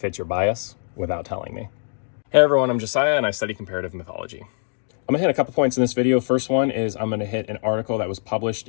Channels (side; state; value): right; silent; digital silence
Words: your bias without telling me. Hey everyone, I'm Josiah and I study comparative mythology. I'm gonna hit a couple points in this video. First one is I'm gonna hit an article that was